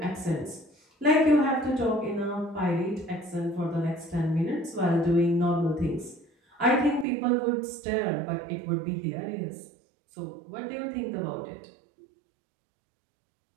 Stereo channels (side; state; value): left; drops out; at 7.1 s